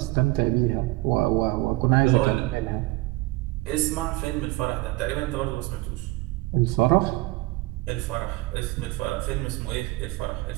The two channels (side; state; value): left; quieter; 21.1 dB